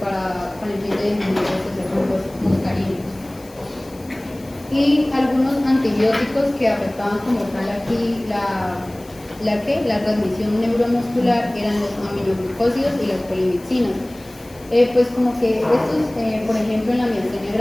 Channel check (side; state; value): left; noise; hiss, 24 dB below the sound